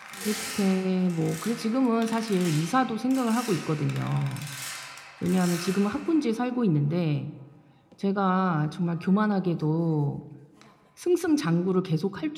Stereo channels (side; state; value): both; identical; correlation 1.00